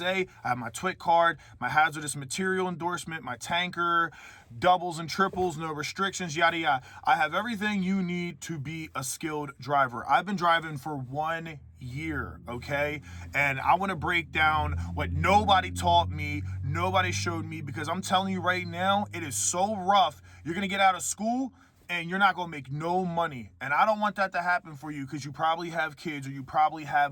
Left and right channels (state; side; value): identical; both; correlation 1.00